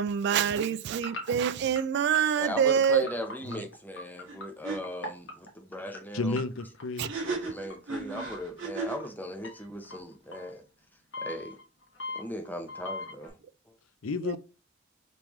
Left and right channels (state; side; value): quieter; left; 4.5 dB